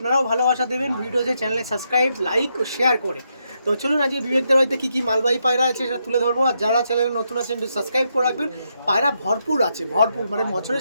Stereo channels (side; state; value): both; inverted; correlation -0.80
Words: ভালোবাসা দেবেন ভিডিওতে, চ্যানেলে সাবস্ক্রাইব, লাইক ও শেয়ার করে। তো চলুন আজকে বিবেকদার বাড়িতে কী মালবাহী পায়রা আছে সেটা তুলে ধরবো। আর যারা চ্যানেলে নতুন আছেন একটু সাবস্ক্রাইব করে রাখবেন। পায়রা ভরপুর আছে, মানে